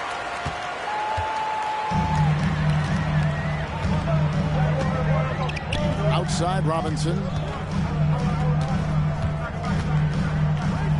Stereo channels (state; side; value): identical; both; correlation 1.00